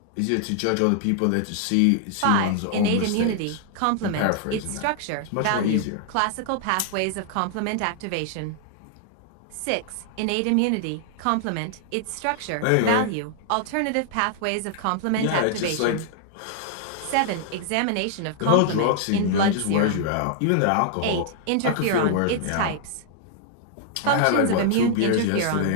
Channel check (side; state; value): both; different; correlation -0.01